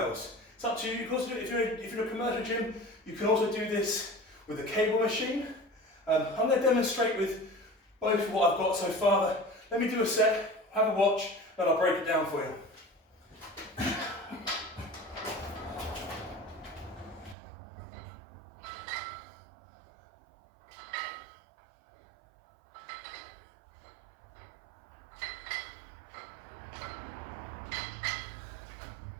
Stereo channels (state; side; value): drops out; left; at 17.4 s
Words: It's up to you. You can also do it if you're in a commercial gym. You can also do this with a cable machine. I'm going to demonstrate with both what I've got so far. Let me do a set, have a watch, and I'll break it down for you.